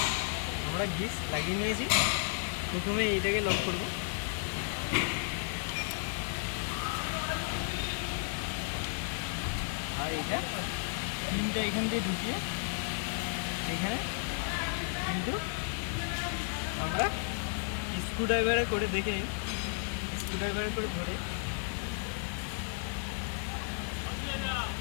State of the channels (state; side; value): silent; right; 55 dB below the other